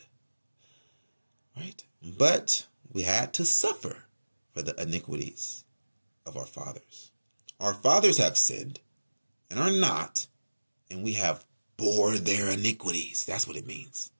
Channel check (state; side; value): inverted; both; correlation -1.00